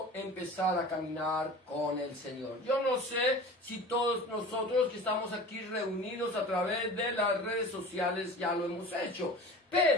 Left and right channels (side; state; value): both; normal; correlation 0.38